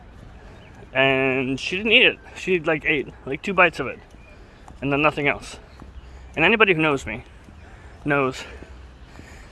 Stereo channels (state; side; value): identical; both; correlation 1.00